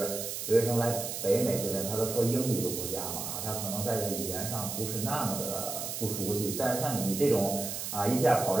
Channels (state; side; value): noise; right; hiss, 5 dB below the sound